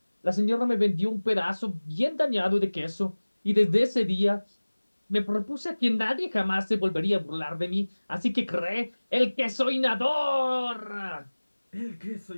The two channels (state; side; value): inverted; both; correlation -1.00